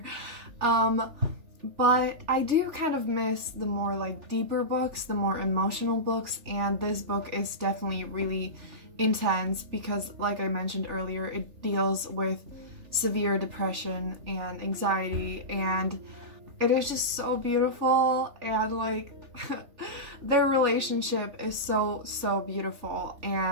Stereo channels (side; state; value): left; late; 3.5 ms